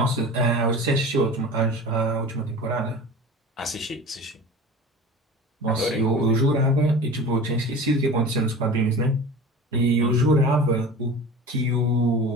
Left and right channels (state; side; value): normal; both; correlation 0.36